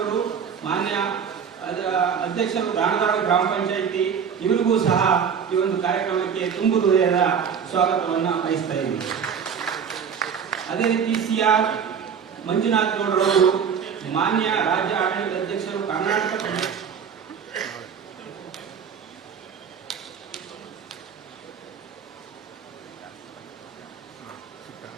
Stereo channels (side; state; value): left; quieter; 7.1 dB